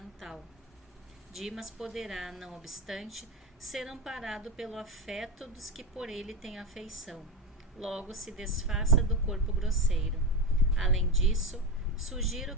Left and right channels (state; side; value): normal; both; correlation 0.18